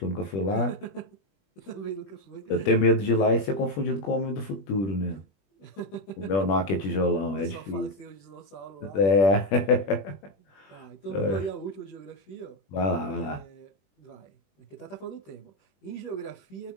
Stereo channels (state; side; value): late; right; 21 ms